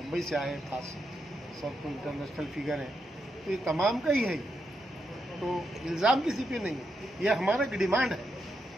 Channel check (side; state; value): both; normal; correlation 0.83